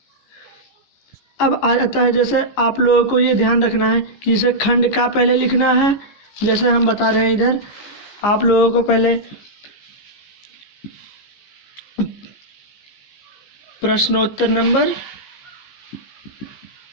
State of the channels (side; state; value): right; late; 15 ms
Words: अब आ जाता है, जैसे आप लोगों को ये ध्यान रखना है कि इसे खंड का पहले लिखना है। जैसे हम बता रहे हैं इधर आप लोगों को पहले प्रश्नोत्तर नंबर